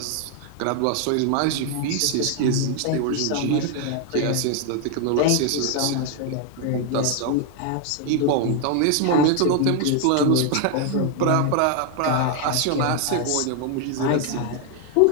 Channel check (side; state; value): both; different; correlation 0.01